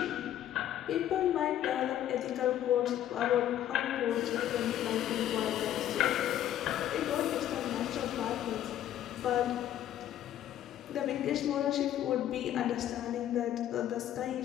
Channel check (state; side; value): quieter; right; 11.7 dB